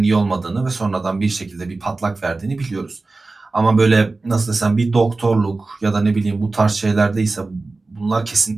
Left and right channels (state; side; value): quieter; left; 3.5 dB